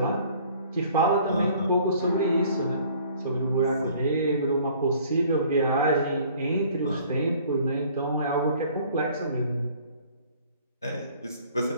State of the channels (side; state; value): both; inverted; correlation -0.54